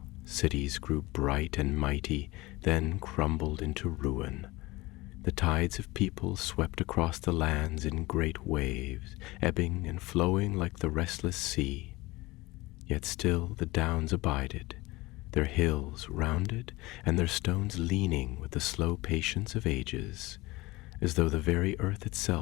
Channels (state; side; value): quieter; right; 21.0 dB